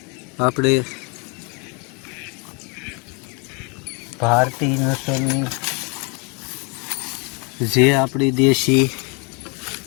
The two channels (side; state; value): right; quieter; 32.7 dB